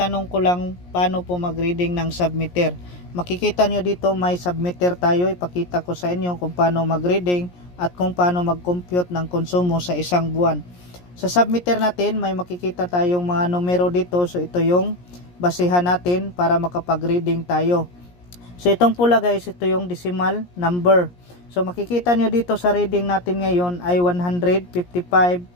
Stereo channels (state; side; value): late; right; 17 ms